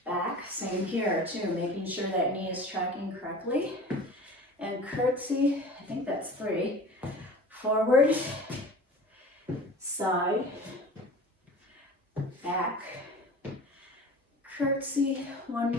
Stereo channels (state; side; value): normal; both; correlation 0.39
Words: back, same here too, making sure that knee is tracking correctly. And curtsy, I think that's 3. Forward, side, back, curtsy, one